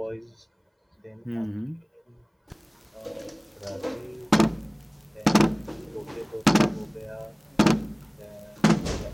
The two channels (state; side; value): identical; both; correlation 1.00